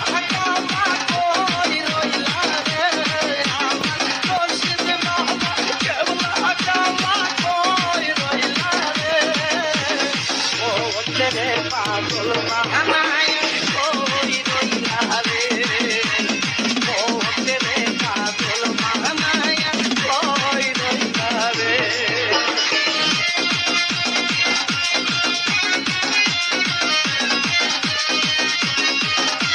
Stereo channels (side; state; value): both; identical; correlation 1.00